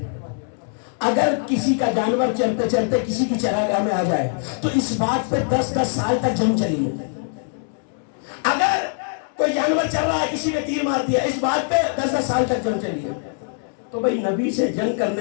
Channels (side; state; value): right; silent; digital silence